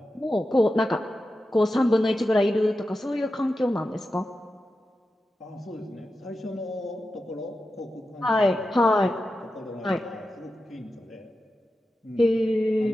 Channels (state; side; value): normal; both; correlation 0.91